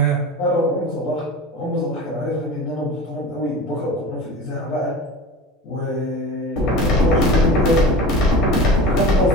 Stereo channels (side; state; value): both; normal; correlation 0.33